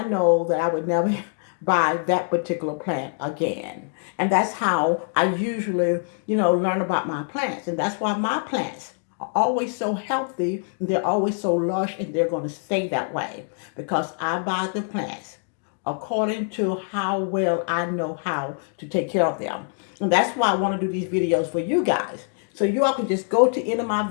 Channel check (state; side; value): silent; right; 59 dB below the other